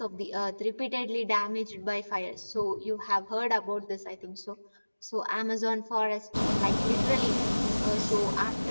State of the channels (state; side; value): inverted; both; correlation -1.00